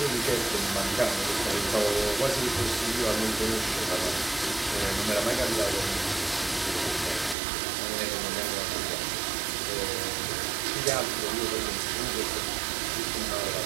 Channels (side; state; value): left; drops out; at 7.4 s